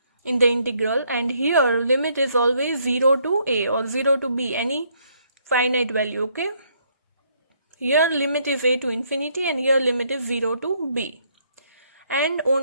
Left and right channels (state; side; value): inverted; both; correlation -0.70